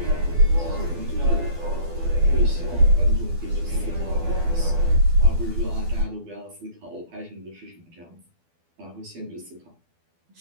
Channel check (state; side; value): late; left; 12 ms